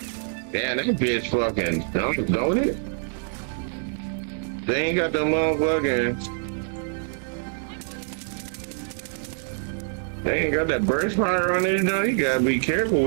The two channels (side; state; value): left; silent; digital silence